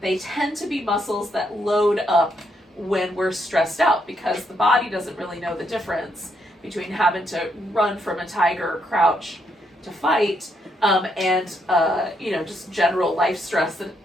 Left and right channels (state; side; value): normal; both; correlation 0.76